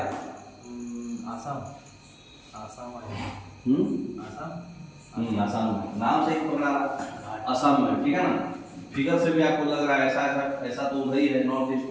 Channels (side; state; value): both; identical; correlation 1.00